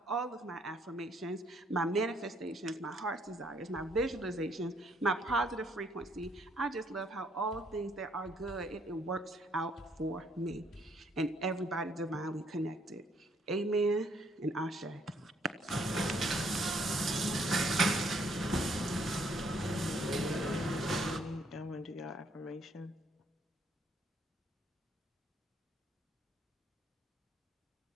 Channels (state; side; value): normal; both; correlation 0.67